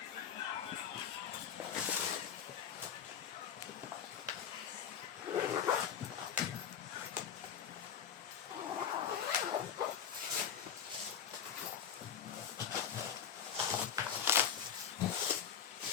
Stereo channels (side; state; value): right; quieter; 8.3 dB